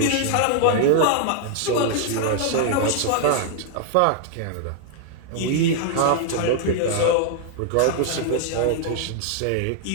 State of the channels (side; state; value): both; different; correlation 0.00